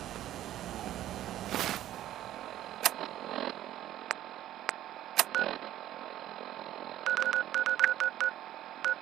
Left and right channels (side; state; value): left; quieter; 12.9 dB